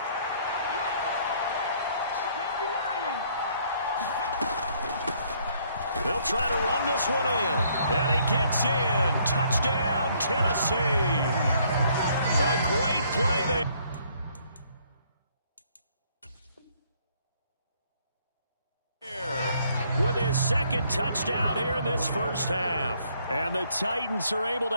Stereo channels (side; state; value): both; inverted; correlation -0.65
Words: They'll try to run this one in. And he gets in. Touchdown, Tennessee. A great play there. With his second touchdown here in this first half. And the Titans are able